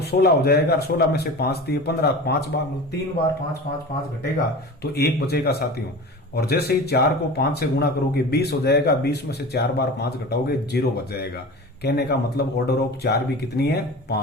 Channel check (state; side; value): normal; both; correlation 0.34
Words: 16 हो जाएगा, 16 में से 5 दिए 15, 5 बार 3 बार 5 5 5 घटेगा तो 1 बचेगा साथियों। और जैसे ही 4 को 5 से गुणा करोगे 20 हो जाएगा, 20 में से 4 बार 5 घटाओगे 0 बच जाएगा। कहने का मतलब ऑर्डर ऑफ 4 भी कितनी है